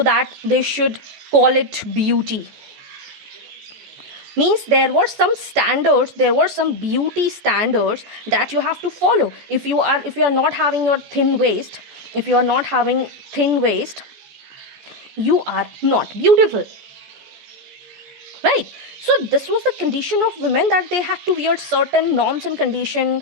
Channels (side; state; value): left; late; 14 ms